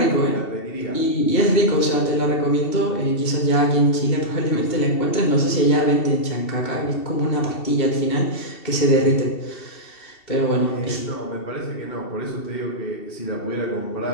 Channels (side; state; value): right; late; 2.7 ms